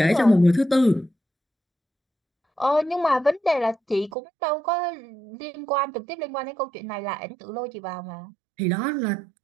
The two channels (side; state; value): left; drops out; at 4.1 s